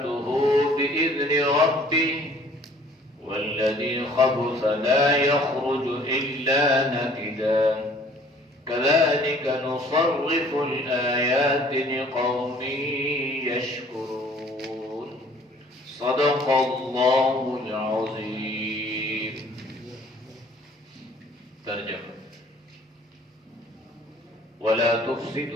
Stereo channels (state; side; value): normal; both; correlation 0.54